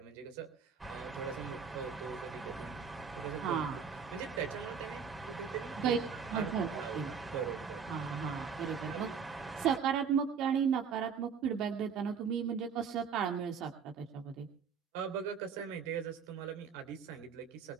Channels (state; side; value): quieter; left; 6.6 dB